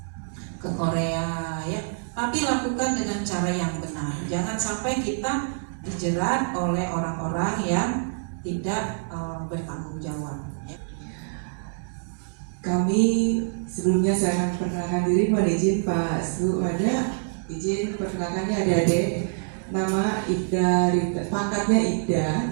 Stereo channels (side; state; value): left; silent; 61 dB below the other